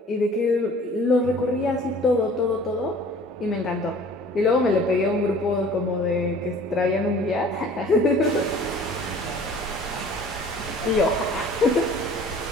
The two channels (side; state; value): both; normal; correlation 0.49